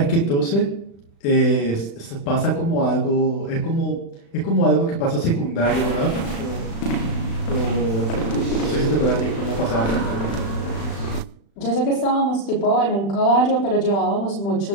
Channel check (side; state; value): right; late; 35 ms